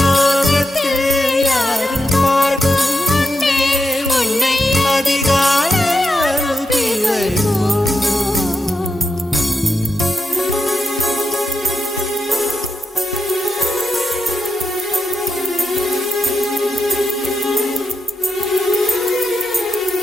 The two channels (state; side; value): normal; both; correlation 0.86